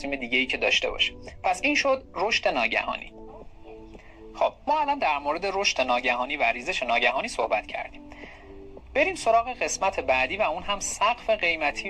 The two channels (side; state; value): both; identical; correlation 1.00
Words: دیگه‌ای که داشته باشه. پس این شد رشد ناگهانی. خب ما الان در مورد رشد ناگهانی و ریزش ناگهانی صحبت کردیم. بریم سراغ قسمت بعدی و اون هم سقف قیمتی